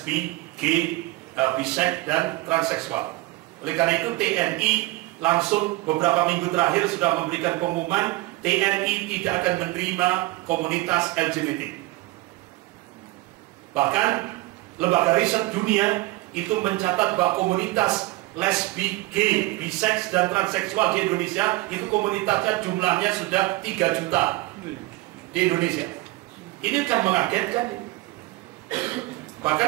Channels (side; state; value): left; quieter; 19.7 dB